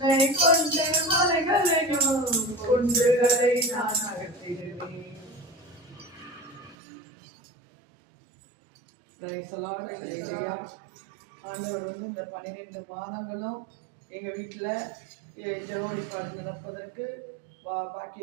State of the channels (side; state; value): left; drops out; at 6.8 s